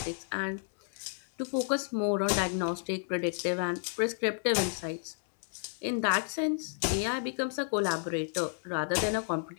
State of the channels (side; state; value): right; silent; 57 dB below the other